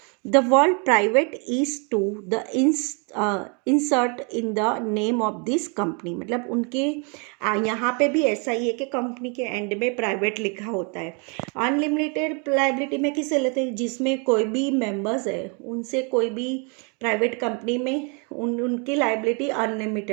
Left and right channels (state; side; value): quieter; left; 35.0 dB